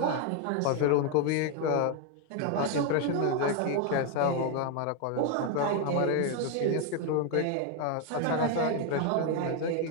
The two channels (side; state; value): both; different; correlation 0.01